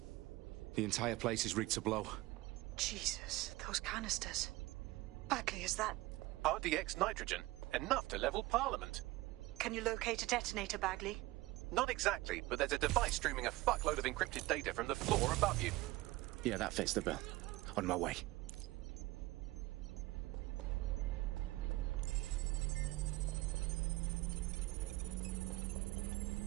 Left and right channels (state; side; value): quieter; left; 19.6 dB